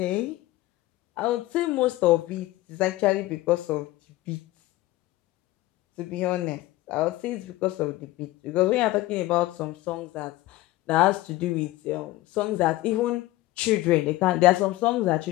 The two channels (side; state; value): right; quieter; 17.6 dB